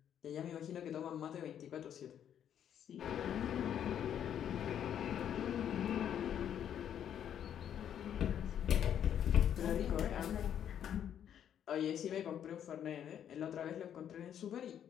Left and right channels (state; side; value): quieter; right; 9.5 dB